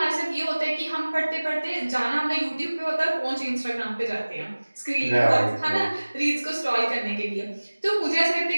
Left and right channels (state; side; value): inverted; both; correlation -1.00